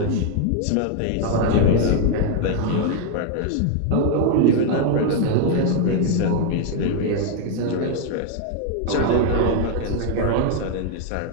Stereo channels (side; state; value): both; different; correlation 0.00